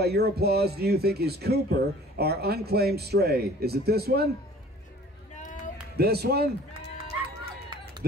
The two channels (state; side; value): normal; both; correlation 0.49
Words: your applause, do you think is Cooper, our unclaimed stray? Is it this one? This one?